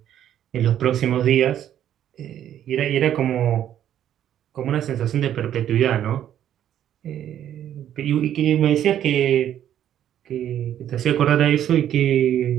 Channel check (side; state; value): left; quieter; 10.7 dB